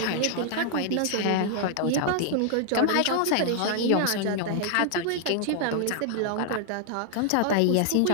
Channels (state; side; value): different; both; correlation 0.00